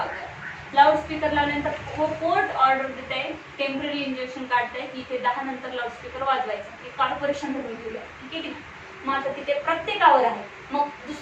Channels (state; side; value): identical; both; correlation 1.00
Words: लाऊडस्पीकर लावल्यानंतर कोर्ट ऑर्डर देत आहे, टेम्पररी इंजेक्शन काढतंय की इथे 10 नंतर लाऊडस्पीकर वाजवायचं. हे कॉर्पोरेशन धरून ठेवलं, ठीक आहे की नाही. मग आता तिथे प्रत्येकावर आहे. मग